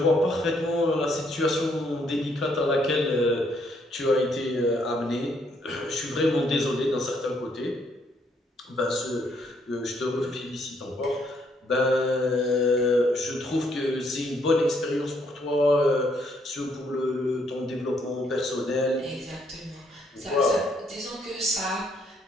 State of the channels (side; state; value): both; normal; correlation 0.71